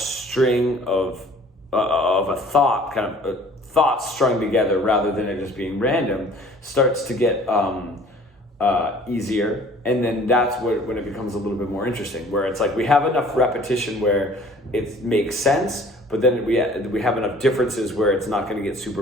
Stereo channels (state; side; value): normal; both; correlation 0.51